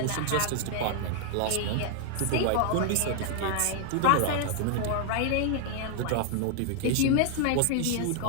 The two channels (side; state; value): both; different; correlation 0.00